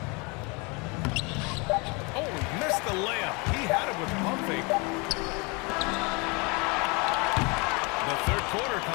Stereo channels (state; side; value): quieter; right; 29.4 dB